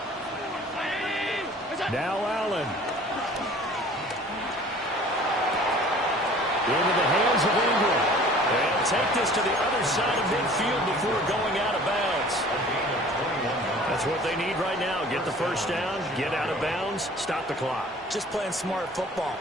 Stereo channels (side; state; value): both; normal; correlation 0.48